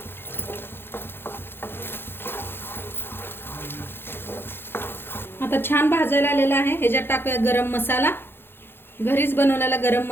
आता छान भाजायला आलेला आहे. ह्याच्यात टाकूया गरम मसाला. घरीच बनवलेला गरम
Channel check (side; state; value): right; late; 0.11 ms